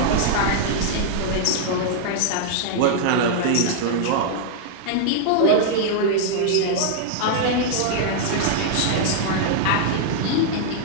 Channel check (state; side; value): different; both; correlation -0.01